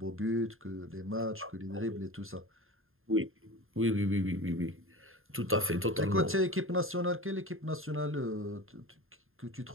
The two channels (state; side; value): late; left; 0.60 ms